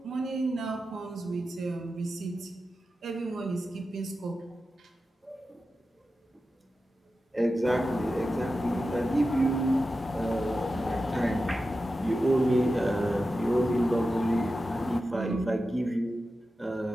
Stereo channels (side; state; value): both; normal; correlation 0.92